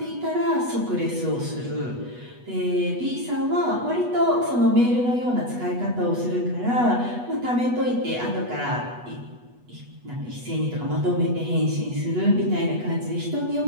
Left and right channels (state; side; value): late; left; 8.2 ms